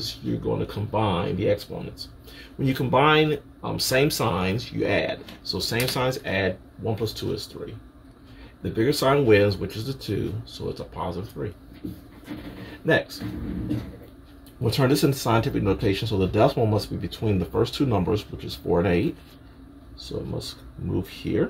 you're going to combine the exponents. When you combine same signs, you add. So same signs add, 1 plus 2 is 3. The bigger sign wins, which is the 2, so it's a positive 3. Next, we'll turn this into scientific notation, so the decimal must be between the first two numbers, which is 4 and 8. So it must move here.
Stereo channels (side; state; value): both; identical; correlation 1.00